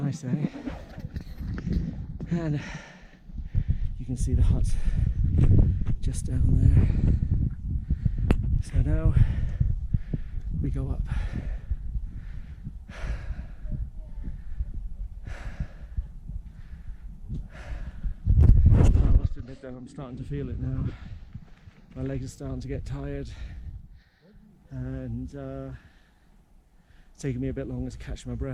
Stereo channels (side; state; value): both; identical; correlation 1.00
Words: eh? And you can see the hut just down there. So now we go up. I must admit that I'm starting to feel it now. My legs are starting to get tired, and it's taking me a bit longer to catch my